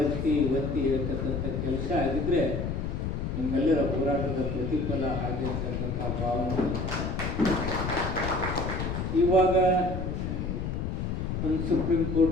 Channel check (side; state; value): left; noise; rumble, 2 dB below the sound